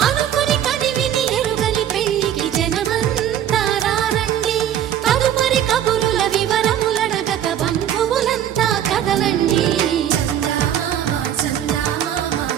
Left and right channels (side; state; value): left; quieter; 10.4 dB